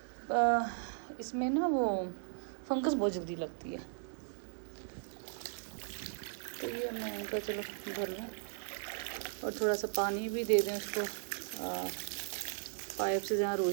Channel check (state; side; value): silent; left; 53 dB below the other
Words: इसमें ना वो फंगस बहुत जल्दी लगती है। तो ये मैं इनका चलो भर लूँ, और थोड़ा सा पानी भी दे दें उसको। पाइप से जहाँ